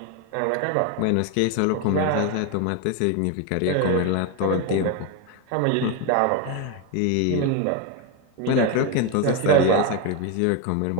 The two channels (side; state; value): both; different; correlation 0.02